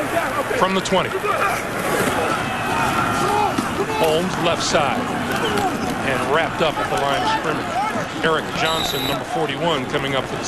From the 20. Holmes left side and wrapped up at the line of scrimmage. Eric Johnson, number 41, coming up for the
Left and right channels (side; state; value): both; identical; correlation 1.00